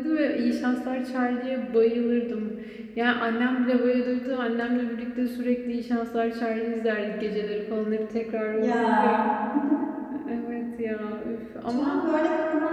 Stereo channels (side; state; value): both; identical; correlation 1.00